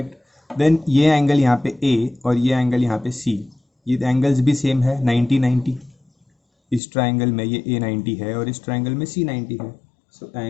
Then ये एंगल यहाँ पे A और ये एंगल यहाँ पे C, ये एंगल्स भी सेम है 90 90, इस ट्राइंगल में ये A 90 है और इस ट्राइंगल में C 90 है, so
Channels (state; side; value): drops out; right; at 6.8 s